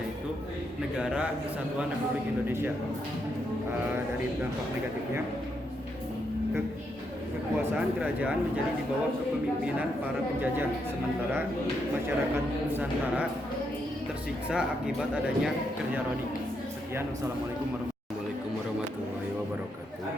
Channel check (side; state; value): both; normal; correlation 0.79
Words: Negara Kesatuan Republik Indonesia. Dari dampak negatifnya, kekuasaan kerajaan menjadi di bawah kepemimpinan para penjajah, sementara masyarakat Nusantara tersiksa akibat adanya kerja rodi. Sekian, wassalamualaikum warahmatullahi wabarakatuh.